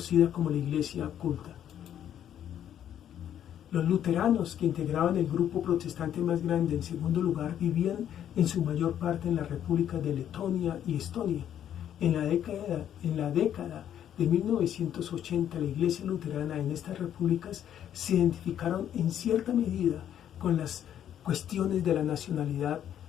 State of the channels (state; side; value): quieter; right; 10.2 dB